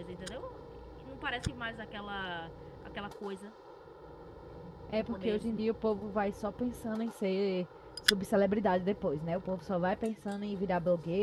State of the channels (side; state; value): both; identical; correlation 1.00